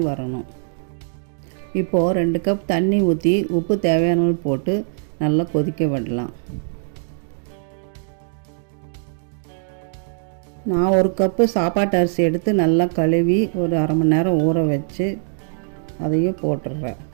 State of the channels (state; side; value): silent; left; 64 dB below the other